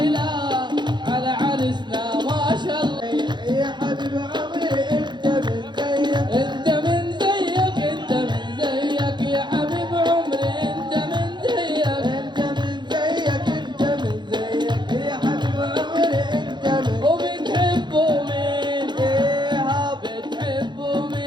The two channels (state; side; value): late; left; 0.22 ms